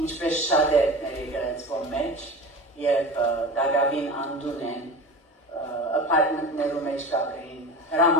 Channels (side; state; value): both; normal; correlation 0.32